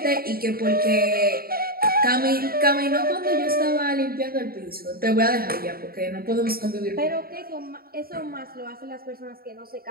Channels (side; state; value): left; late; 0.43 ms